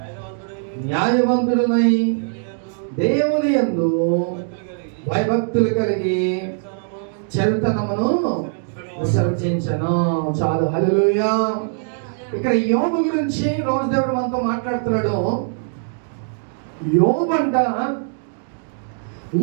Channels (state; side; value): silent; left; digital silence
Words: న్యాయవంతుడునై దేవుని యందు భయభక్తులు కలిగి చెడుతనమును విసర్జించను. చాలు, హల్లెలూయా. ఇక్కడ యోబు గురించి రోజు దేవుడు మనతో మాట్లాడుతున్నాడు. యోబు అంట